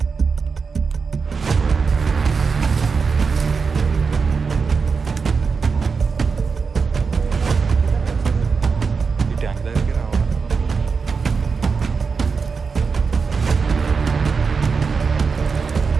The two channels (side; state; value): left; quieter; 5.2 dB